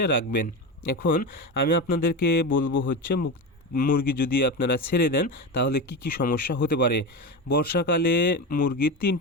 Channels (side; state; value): both; normal; correlation 0.20